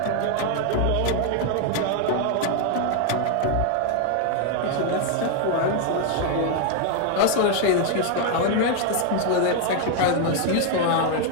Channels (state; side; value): different; both; correlation 0.00